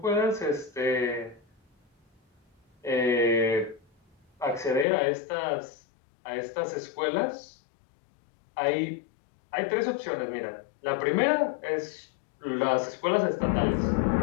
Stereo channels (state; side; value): drops out; right; at 4.9 s